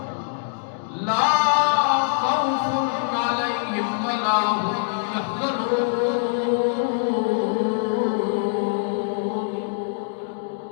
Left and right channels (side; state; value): right; silent; digital silence